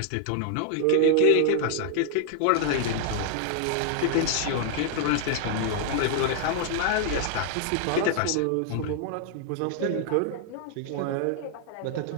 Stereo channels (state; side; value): different; both; correlation 0.00